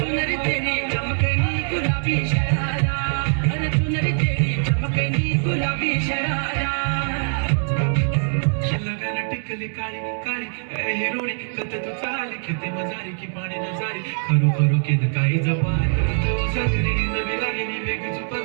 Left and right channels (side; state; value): left; silent; 64 dB below the other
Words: चुनरी तेरी चमकनी गुलाबी शरारा अरे चुनरी तेरी चमकनी गुलाबी शरारा लगन टिकली काळी काळी ए हिरोणी कत तू चाली खेते मजारी की पाणी नजारी खरू खरू केद काही जपाय तू सगरी नवी लागली वेग